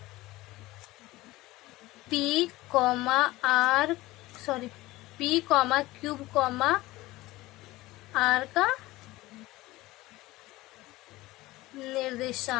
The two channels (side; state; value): right; quieter; 18.7 dB